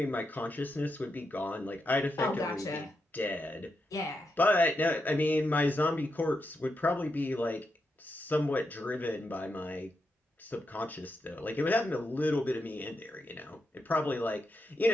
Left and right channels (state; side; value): normal; both; correlation 0.85